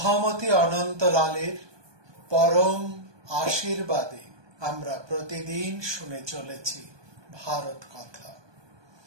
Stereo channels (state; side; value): late; left; 1.2 ms